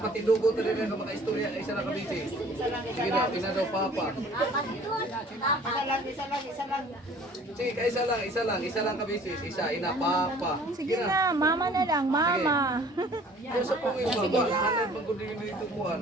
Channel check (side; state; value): both; normal; correlation 0.51